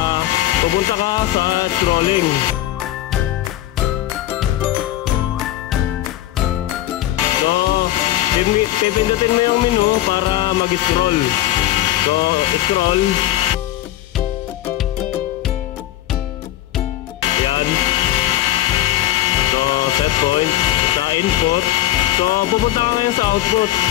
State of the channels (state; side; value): quieter; right; 14.3 dB